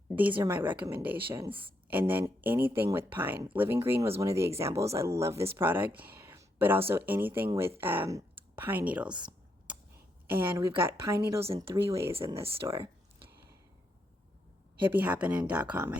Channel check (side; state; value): both; normal; correlation 0.79